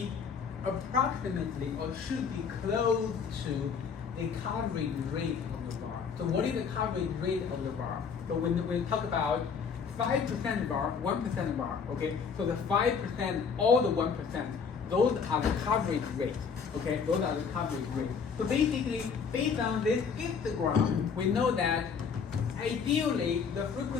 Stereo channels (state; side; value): quieter; right; 6.1 dB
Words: approximately or should be close to the coverage rate of the bar. So what is the coverage rate of the bar? So when we talk about 5% bar, 1% bar, okay? So the 5%, all the 1%, those are the coverage rate, okay? Those are the coverage rate. So basically, based on this histogram, we know that ideally the